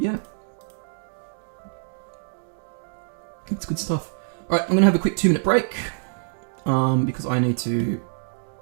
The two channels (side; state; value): left; silent; digital silence